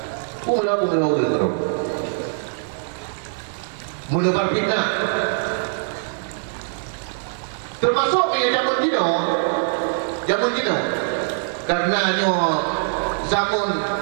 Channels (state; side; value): silent; left; digital silence